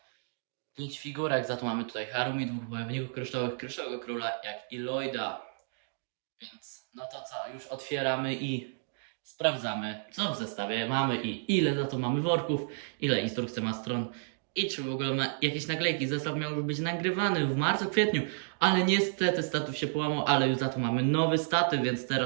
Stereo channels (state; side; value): silent; left; digital silence